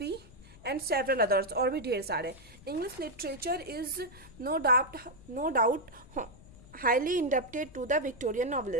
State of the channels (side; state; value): left; noise; rumble, 21 dB below the sound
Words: and several others, और भी ढेर सारे। English literature is no doubt highly indebted to the Victorian